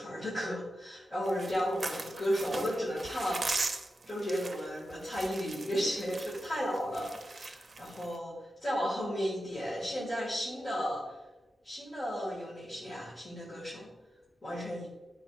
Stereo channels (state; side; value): normal; both; correlation 0.90